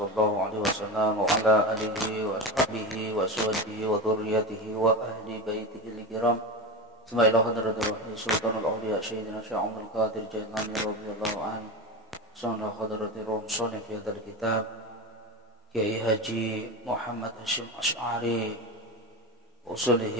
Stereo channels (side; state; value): both; normal; correlation 0.22